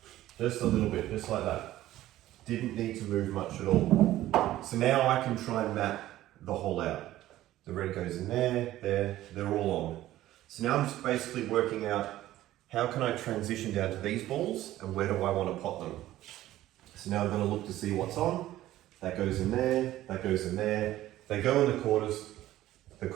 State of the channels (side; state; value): left; quieter; 14.6 dB